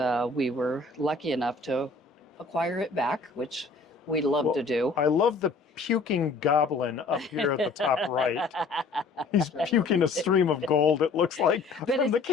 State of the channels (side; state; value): right; quieter; 4.0 dB